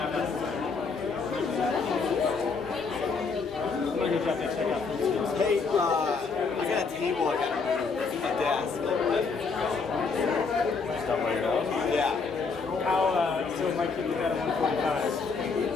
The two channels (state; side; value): quieter; right; 4.8 dB